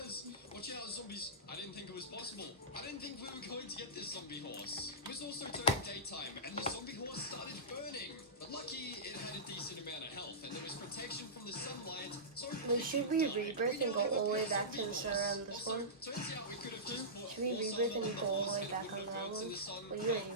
Watch out, zombies. I didn't think it was possible. I didn't think we were going to get this zombie horse. It was also turning daytime, and the zombie horse started burning. But lucky, it had a decent amount of health, and there was protection from the sunlight. So Should we rebirth and go all the way back to the center on this one? turns out we could have just put Should we rebirth and go all the way back on that one? Well, you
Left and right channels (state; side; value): normal; both; correlation -0.18